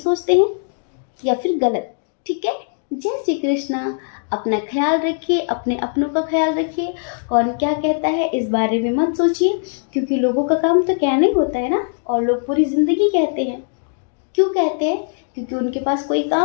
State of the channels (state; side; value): silent; right; 66 dB below the other